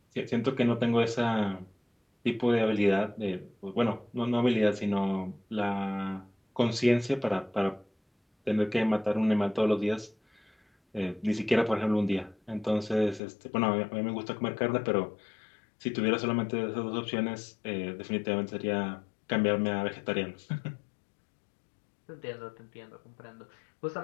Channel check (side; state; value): right; drops out; at 13.2 s